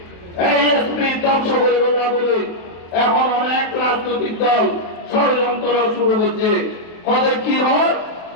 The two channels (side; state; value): right; late; 23 ms